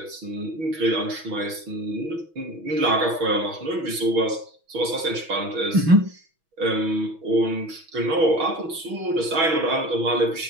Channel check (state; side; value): late; left; 6.1 ms